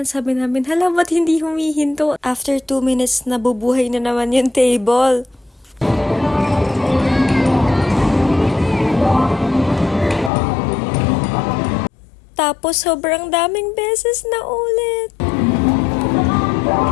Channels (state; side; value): drops out; right; at 10.3 s